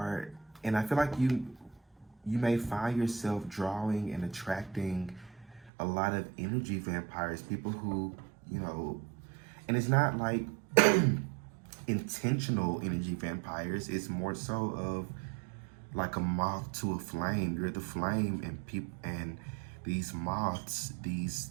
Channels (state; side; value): drops out; left; at 5.7 s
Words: I feel like you may find yourself drawing and attracting a lot of energy vampires, people who, and it's not like intentional energy vampires. It's more so of like a moth to a flame. You're the flame, and these moths,